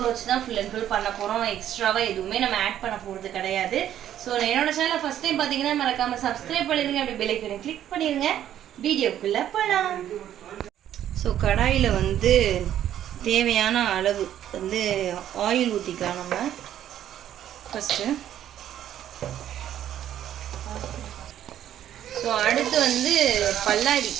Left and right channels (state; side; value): quieter; left; 11.1 dB